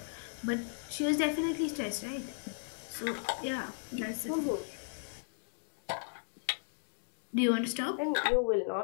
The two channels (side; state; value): right; silent; digital silence